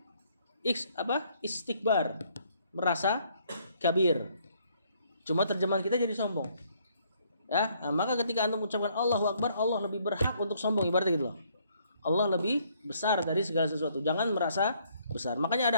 istikbar, merasa kabir. Cuma terjemahan kita jadi sombong. Ya, nah, maka ketika antum mengucapkan Allahu Akbar, Allah lebih berhak untuk sombong, ibaratnya gitu loh. Allah lebih besar dari segala sesuatu. Jangan merasa besar. Makanya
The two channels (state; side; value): inverted; both; correlation -0.67